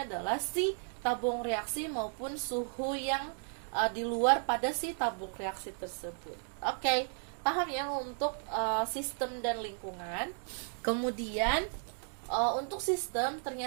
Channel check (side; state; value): left; silent; 55 dB below the other